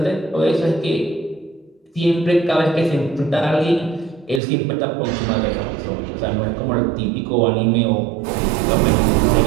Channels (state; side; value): drops out; left; at 4.4 s